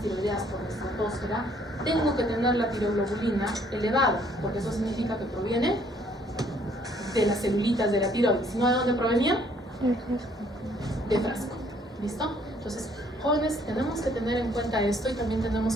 tiroideas por la estratosfera, tengo que tener la tiroglobulina elevada, porque eso significa que proviene de las celulitas de la tiroides. ¿Si no, de dónde provenía? De frasco. ¿Listo? Entonces, jóvenes, tenemos que tener en cuenta esto y también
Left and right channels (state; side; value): normal; both; correlation 0.63